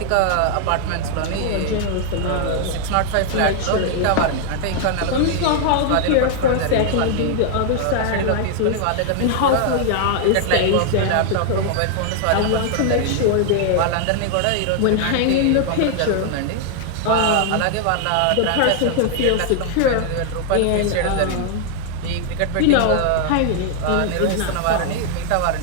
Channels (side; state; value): both; different; correlation 0.00